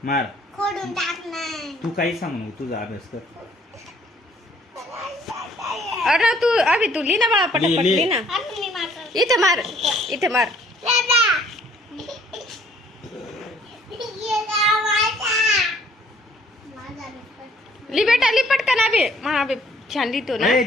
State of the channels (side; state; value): both; normal; correlation 0.61